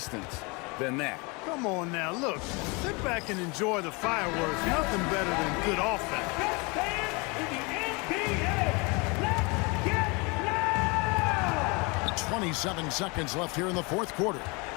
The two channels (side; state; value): right; quieter; 28.6 dB